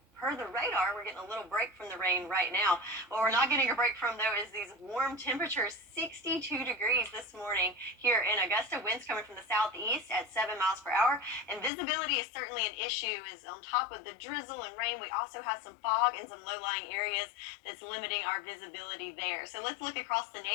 per the radar, we're getting a little break from the rain right now. What we're not getting a break from, though, is these warm temperatures. 62 degrees this morning here in Augusta. Winds coming from the southeast at 7 miles per hour. And visibility is certainly an issue. Is on top of the drizzle and rain, we also have some fog in some low-lying areas that's limiting our visibility there. So let's look across the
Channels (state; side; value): drops out; right; at 11.7 s